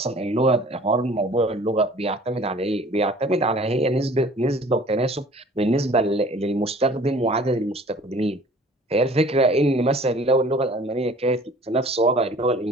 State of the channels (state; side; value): normal; both; correlation 0.50